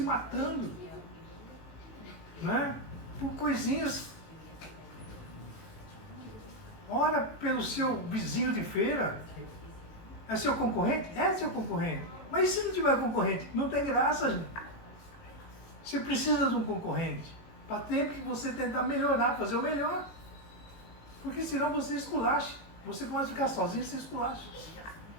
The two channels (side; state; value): right; late; 18 ms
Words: matando, né? Por coisinhas. Ora pelo seu vizinho de feira. É seu concorrente? É seu concorrente. Mas e se não tiver concorrente? Não tem graça, gente. Você precisa de um concorrente. Para ter que você tentar melhorar, fazer o melhor. Porque senão você esculacha. Você pode ficar sozinho e você esculacha.